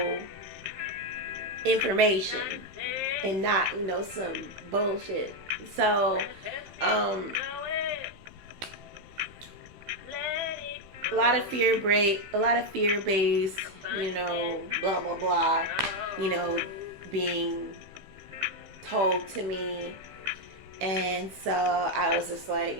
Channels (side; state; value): left; late; 15 ms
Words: information and not, some bullshit. So, a lot of fear-based, blah, blah, blah, being told to me. And so I was just like,